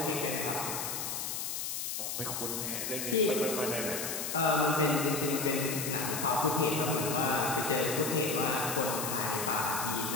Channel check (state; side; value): noise; left; hiss, 3 dB below the sound